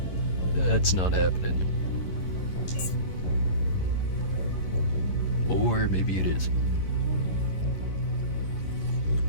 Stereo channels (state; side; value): late; right; 11 ms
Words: That's not happening. Or maybe it is.